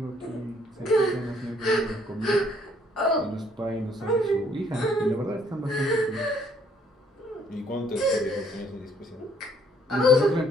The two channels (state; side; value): normal; both; correlation 0.65